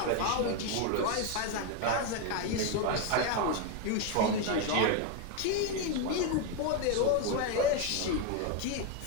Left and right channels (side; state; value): both; different; correlation 0.02